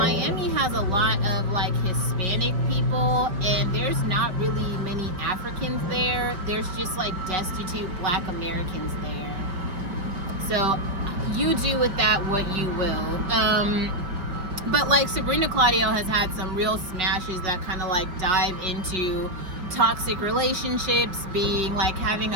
has a lot of, like, Hispanic people, and there's not really many Africans there. There's just, like, destitute black Americans there. So you do with that what you will. But, like, Sabrina Claudio has had some real smashes that kind of, like, dive into toxic relationships, being, like, having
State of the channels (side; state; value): left; late; 5.0 ms